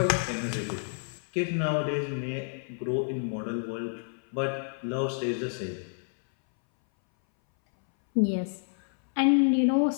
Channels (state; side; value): silent; right; 59 dB below the other